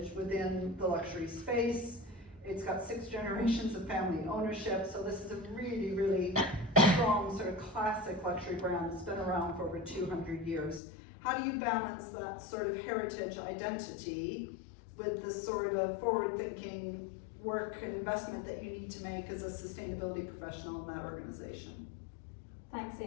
within the luxury space. It's got 6 generations of family ownership, so this is a really, really strong sort of classic luxury brand that's been around for over 200 years. How do you balance that sort of heritage identity with the sort of forward-thinking work and investment that you need to make as a sustainability professional in that organization? Thanks,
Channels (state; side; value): drops out; right; at 10.8 s